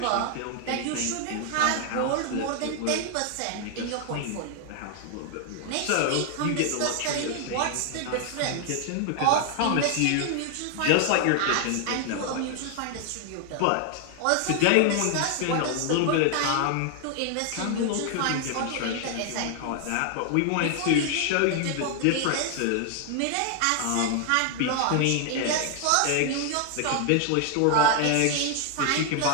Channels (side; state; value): both; different; correlation 0.00